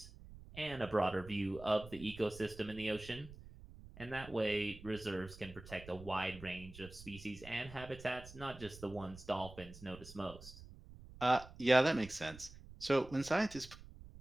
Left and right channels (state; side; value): noise; right; rumble, 16 dB below the sound